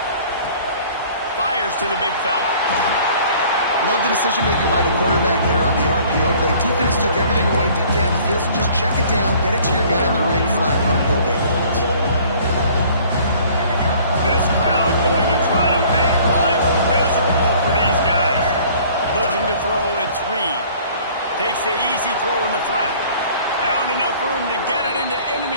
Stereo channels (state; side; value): inverted; both; correlation -0.53